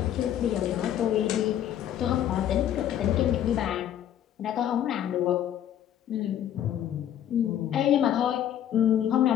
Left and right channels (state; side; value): quieter; right; 10.7 dB